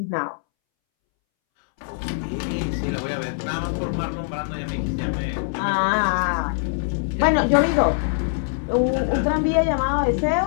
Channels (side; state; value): right; silent; 64 dB below the other